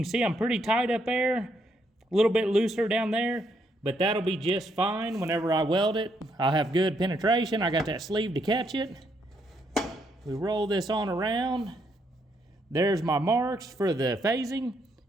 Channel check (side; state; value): both; normal; correlation 0.75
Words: see I'm pretty tight up there, a little bit looser down there, but that'll be just fine whenever I weld it. I'll have good penetration. I got that sleeve to catch it. We roll this on around. There's my marks for the phasing.